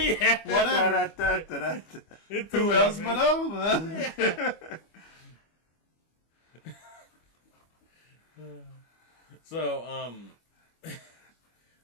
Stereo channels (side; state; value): right; late; 25 ms